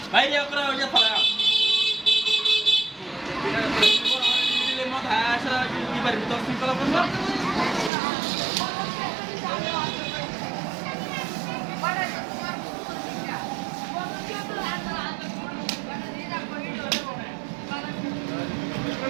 বাইরে করে ওই যে ফলা দিলে মত আসা কি পারি তো সিম্পল করব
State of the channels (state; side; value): drops out; left; at 7.9 s